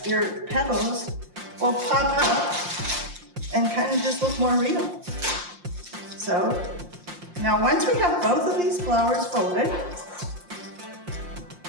your petals will pop up and kind of just look more real. So now once we have both of these flowers folded,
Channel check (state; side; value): late; left; 5.7 ms